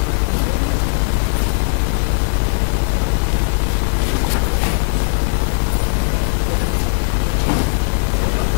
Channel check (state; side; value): silent; right; digital silence